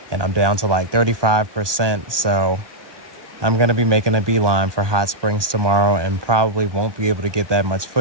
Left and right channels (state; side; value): late; left; 1.2 ms